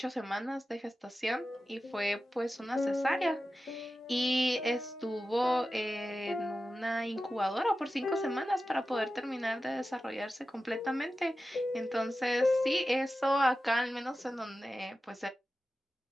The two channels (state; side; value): normal; both; correlation 0.93